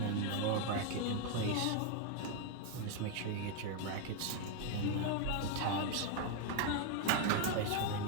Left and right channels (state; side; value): different; both; correlation 0.01